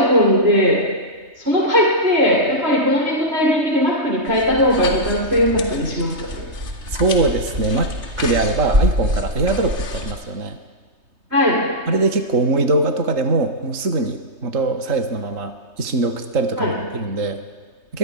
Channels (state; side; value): late; left; 3.2 ms